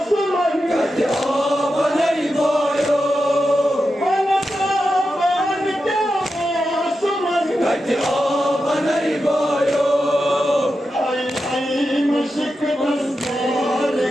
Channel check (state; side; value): normal; both; correlation 0.89